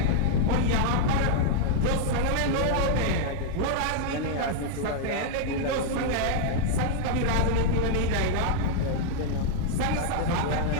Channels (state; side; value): different; both; correlation -0.01